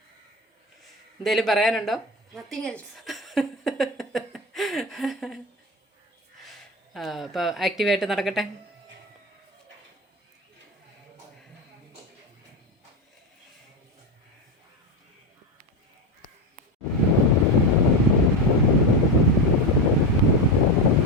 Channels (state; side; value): normal; both; correlation 0.16